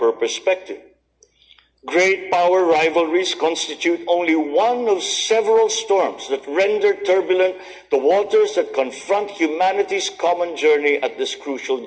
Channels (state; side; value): identical; both; correlation 1.00